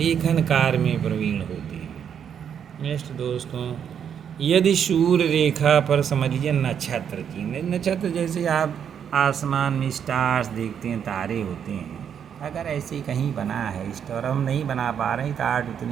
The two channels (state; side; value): quieter; left; 8.2 dB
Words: कार्य में प्रवीण होते हैं। नेक्स्ट दोस्तों, यदि सूर्य रेखा पर समझ लीजिए नक्षत्र की, नक्षत्र जैसे आप आसमान में स्टार्स देखते हैं, तारे होते हैं, अगर ऐसे कहीं बना है स्टार, हम नहीं बना पा रहे हैं तो आर्ट